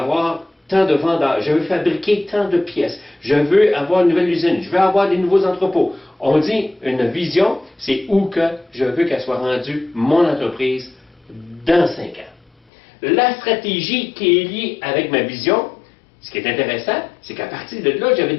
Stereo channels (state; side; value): drops out; right; at 12.5 s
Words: tant de vendeurs. Je veux fabriquer tant de pièces. Je veux avoir une nouvelle usine. Je veux avoir des nouveaux entrepôts. On dit une vision, c'est où que je veux qu'elle soit rendue, mon entreprise, dans 5 ans. La stratégie qui est liée avec ma vision, ce qui est intéressant, c'est qu'à partir de là, j'avais